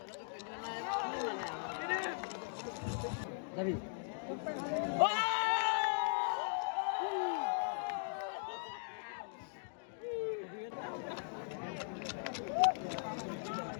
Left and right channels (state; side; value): silent; right; digital silence